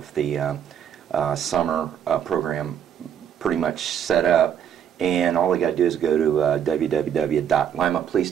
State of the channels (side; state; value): left; quieter; 8.9 dB